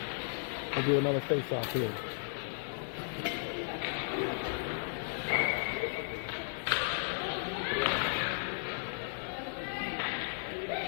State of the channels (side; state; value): right; silent; digital silence